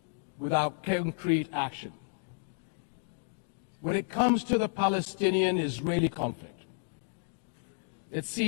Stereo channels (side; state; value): right; silent; digital silence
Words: without concrete action? When it comes to the Palestinian-Israeli conflict, it